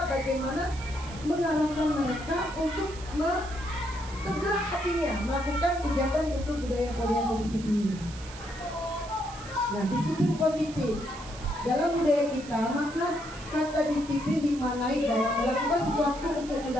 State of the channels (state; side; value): noise; right; hiss, 17 dB below the sound